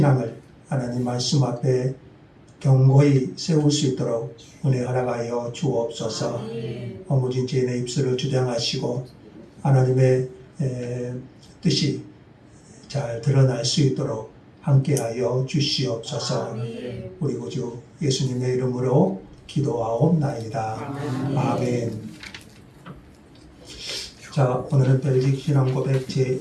하나님 말씀 앞에 견고히 세울 수 있도록 은혜 허락하여 주옵소서. 허무진 죄인의 입술을 주장하시고 하나님의 뜻이 잘 드러날 수 있도록 함께하여 주시옵소서. 우리 구주 예수님의 이름으로 기도하옵나이다. 아멘. 자, 오늘은 벨직 신앙 고백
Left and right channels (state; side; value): identical; both; correlation 1.00